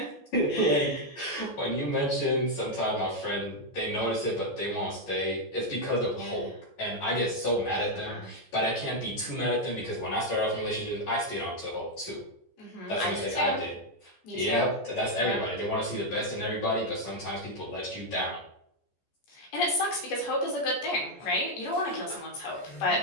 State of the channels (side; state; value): right; late; 14 ms